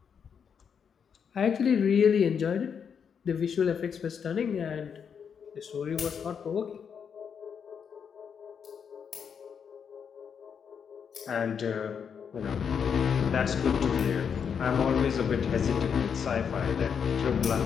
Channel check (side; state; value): right; quieter; 7.0 dB